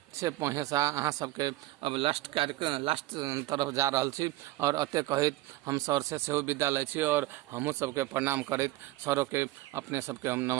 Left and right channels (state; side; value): quieter; left; 17.3 dB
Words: से पहुँचा अहाँ सबके अब लास्ट तरफ जा रहा छी और अते कहित हम सर से सेहो विदा लै छी और हमहूँ सबके प्रणाम करैत सरों के अपने सबके हम